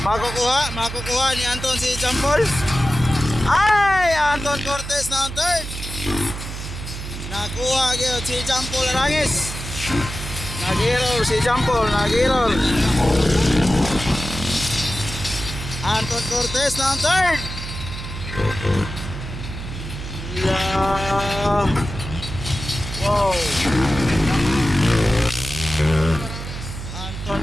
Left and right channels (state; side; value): noise; right; hum, 8 dB below the sound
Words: makukuha ni Anton si Jampol. Ay, Anton Cortez na ang third. Nakuha gyud si Jampol Arangis. Nag-error si Jampol, nag-error. Anton Cortez na ang third. Wow. Anton